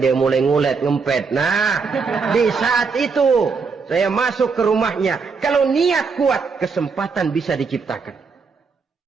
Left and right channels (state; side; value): quieter; left; 5.0 dB